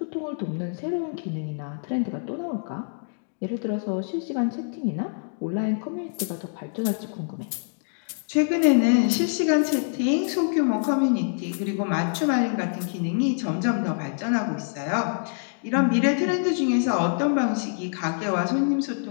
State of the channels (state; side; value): silent; right; digital silence